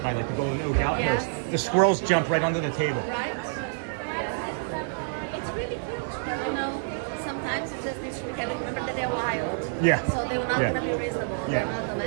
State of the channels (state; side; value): silent; left; digital silence